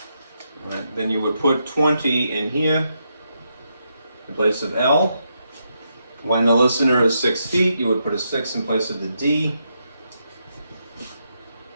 right, then you would put 20 in here in place of L. When the listener is 6 feet, you would put a 6 in place of the D.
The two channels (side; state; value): both; inverted; correlation -0.81